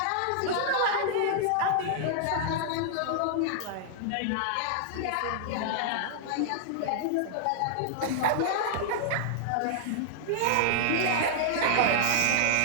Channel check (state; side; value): different; both; correlation -0.01